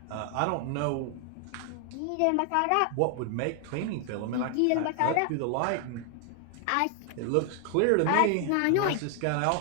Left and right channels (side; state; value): both; different; correlation 0.00